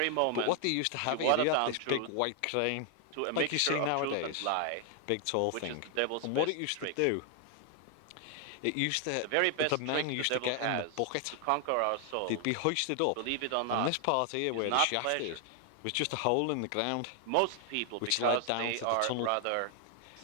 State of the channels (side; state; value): both; different; correlation 0.00